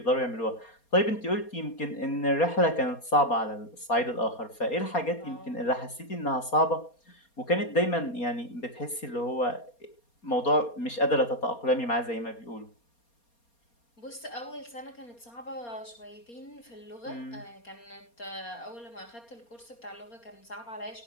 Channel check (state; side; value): late; right; 4.3 ms